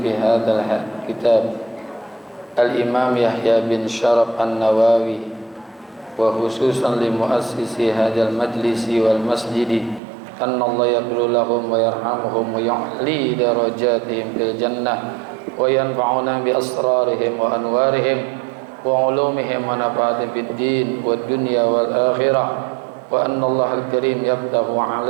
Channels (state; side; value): drops out; left; at 10.0 s